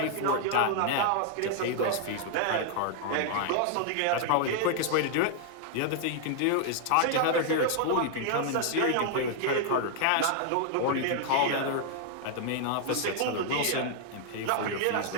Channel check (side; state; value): both; different; correlation -0.01